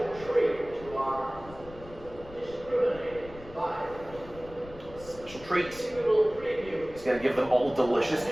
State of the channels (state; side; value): noise; left; rumble, 17 dB below the sound